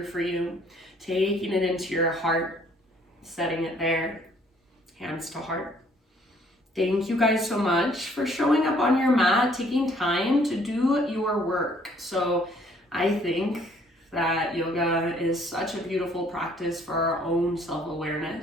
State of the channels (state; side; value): normal; both; correlation 0.62